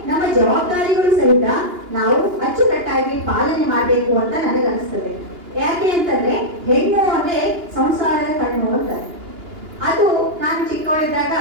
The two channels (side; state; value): left; late; 2.8 ms